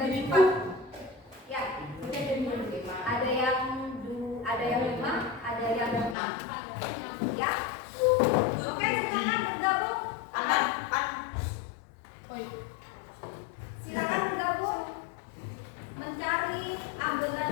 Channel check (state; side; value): drops out; right; at 6.2 s